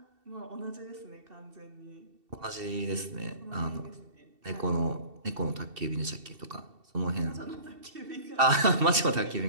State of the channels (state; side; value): late; left; 2.7 ms